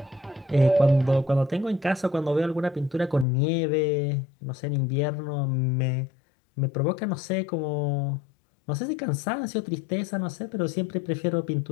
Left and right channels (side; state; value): right; drops out; at 3.2 s